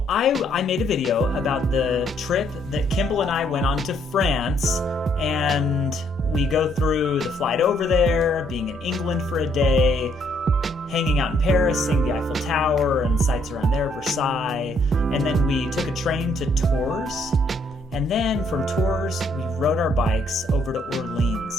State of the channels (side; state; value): both; normal; correlation 0.69